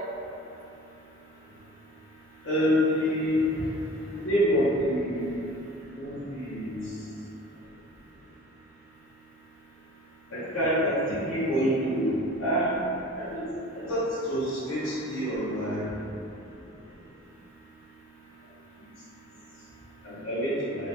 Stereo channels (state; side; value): normal; both; correlation 0.42